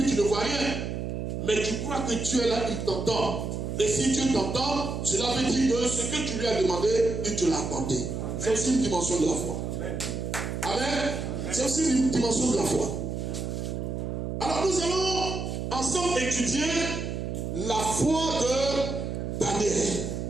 tu ne vois rien. Mais tu crois que Dieu est là, il t'entend. Et si Dieu t'entend, cela veut dire que ce que tu lui as demandé, il te l'a apporté. C'est aussi une dimension de la foi. Amen. C'est aussi une dimension de la foi. Alors nous allons ensemble étudier la foi de Daniel.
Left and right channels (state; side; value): noise; right; hum, 4 dB below the sound